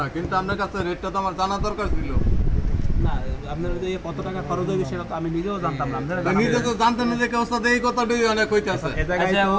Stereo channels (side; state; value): both; identical; correlation 1.00